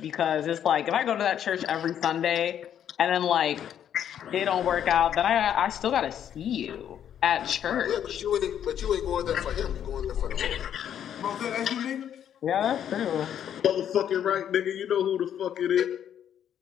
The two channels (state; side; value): quieter; right; 9.6 dB